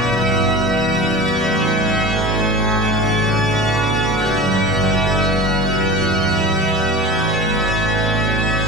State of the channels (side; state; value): both; normal; correlation 0.34